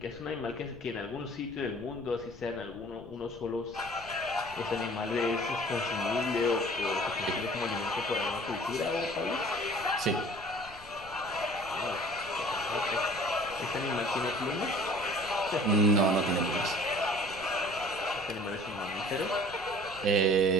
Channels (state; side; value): noise; left; rumble, 20 dB below the sound